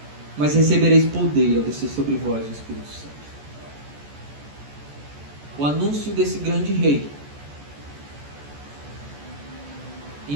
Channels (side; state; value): left; late; 14 ms